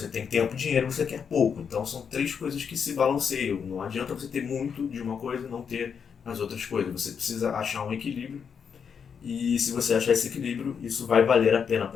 tem tempo e dinheiro e você quer pouco. Então são três coisas que se balanceiam. Não adianta você ter muito de uma coisa e não ter as outras coisas. Você precisa achar um equilíbrio, e se você achar esse equilíbrio, isso vai valer a pena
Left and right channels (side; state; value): right; quieter; 6.8 dB